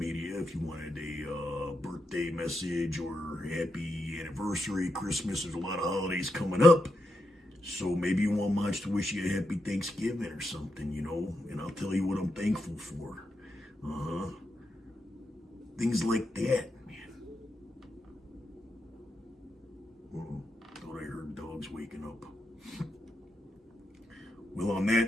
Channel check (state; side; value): normal; both; correlation 0.84